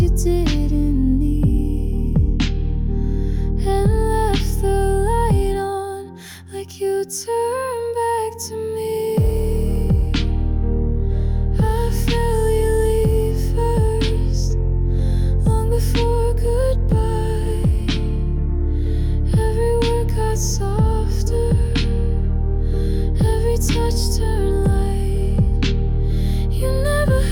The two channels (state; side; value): identical; both; correlation 1.00